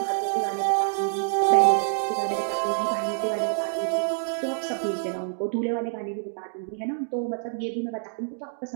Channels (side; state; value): left; silent; digital silence